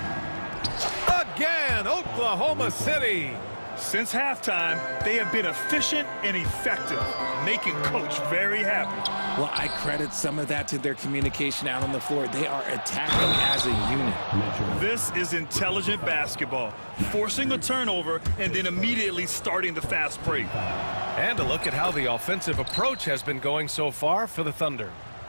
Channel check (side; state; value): both; inverted; correlation -1.00